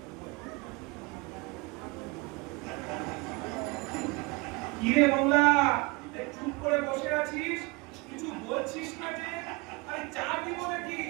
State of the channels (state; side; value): quieter; left; 26.5 dB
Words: কিরে বাংলা, চুপ করে বসে আছিস, কিছু বলছিস না যে? আরে চা দিব নাকি?